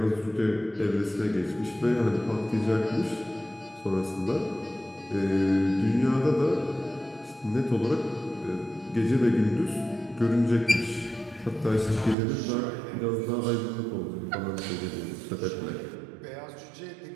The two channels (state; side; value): drops out; left; at 12.2 s